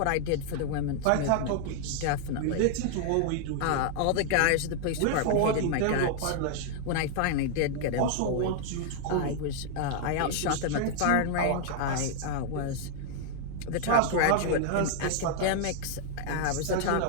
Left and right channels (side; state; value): both; different; correlation 0.00